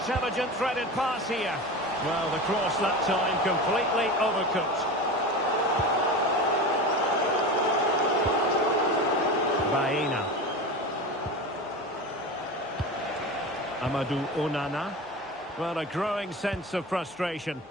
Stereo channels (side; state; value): both; normal; correlation 0.28